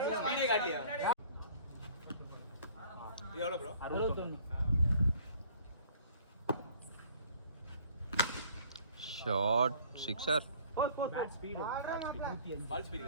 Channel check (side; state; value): both; inverted; correlation -0.54